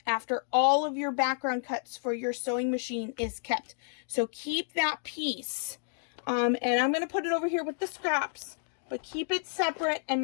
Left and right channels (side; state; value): right; silent; digital silence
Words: all of your background cuts for your sewing machine is kept. So keep that piece. And I'm going to put it over here with the scraps, but keep it separate and